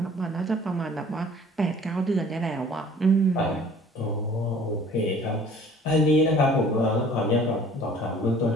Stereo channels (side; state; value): both; normal; correlation 0.51